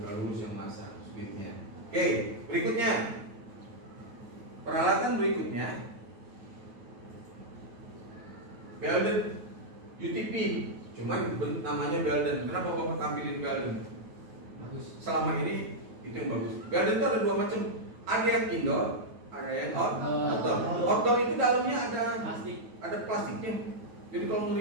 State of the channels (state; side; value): late; left; 9.2 ms